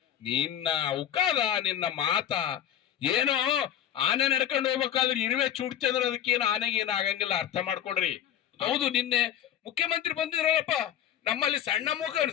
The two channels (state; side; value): quieter; right; 10.5 dB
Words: ನಿನ್ನ ಉಕಾದ, ನಿನ್ನ ಮಾತ ಏನೋ ಆನೆ ನಡ್ಕೊಂಡು ಹೋಗ್ಬೇಕಾದ್ರೆ ಇರುವೆ ಚೂಡ್ತಿ ಅಂದ್ರೆ ಅದಕ್ಕೇನು ಆನೆಗೆ ಏನು ಆಗಂಗಿಲ್ಲ. ಅರ್ಥ ಮಾಡ್ಕೊಡ್ರಿ. ಹೌದು, ನಿನ್ನೆ ಮುಖ್ಯಮಂತ್ರಿ ಬಂದಿದ್ರಲ್ಲಪ್ಪ, ನಮ್ಮಲ್ಲಿ